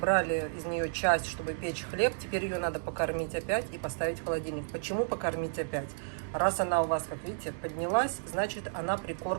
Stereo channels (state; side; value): silent; left; digital silence